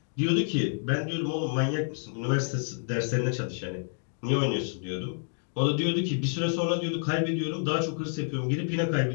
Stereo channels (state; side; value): silent; right; digital silence